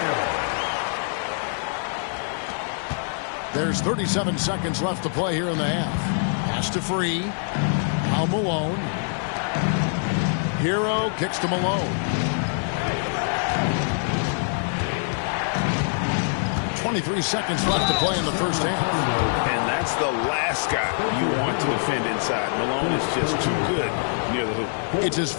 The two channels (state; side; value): silent; right; digital silence